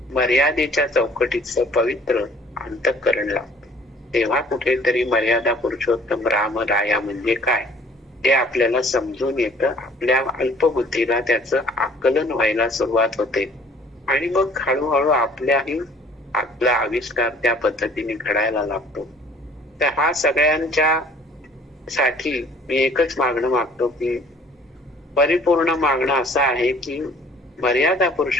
मर्यादेच्या चौकटीचं पवित्र अंतःकरण लागतं. तेव्हा कुठेतरी मर्यादा पुरुषोत्तम रामराया म्हणजे काय ते आपल्याला समजून येतं. आपल्या अल्पबुद्धीला त्याचं आकलन व्हायला सुरुवात होते आणि मग हळूहळू आपला आविष्कार त्या पद्धतीने घडायला लागतो. तर हा सगळ्यांच्या साठी मी एकच मागणं मागतो की परिपूर्ण मागणं असं आहे की मर्यादा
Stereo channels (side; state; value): both; normal; correlation 0.54